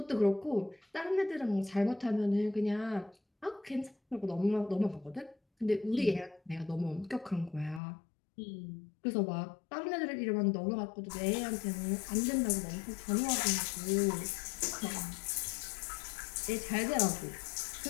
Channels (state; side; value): drops out; right; at 7.8 s